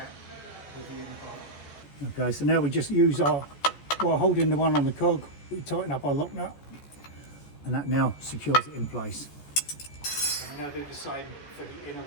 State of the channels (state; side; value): late; right; 14 ms